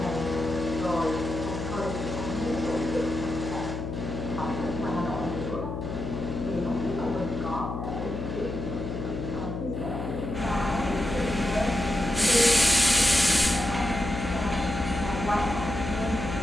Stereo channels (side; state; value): left; noise; hum, 5 dB below the sound